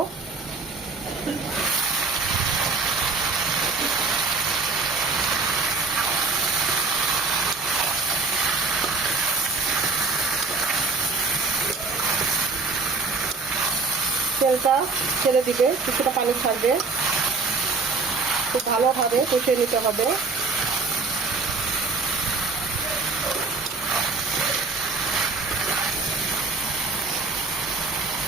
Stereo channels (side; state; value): left; quieter; 3.9 dB